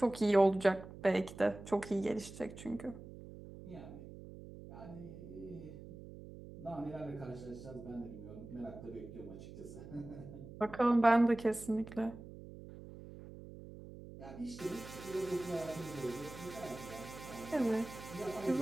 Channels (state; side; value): noise; right; hum, 14 dB below the sound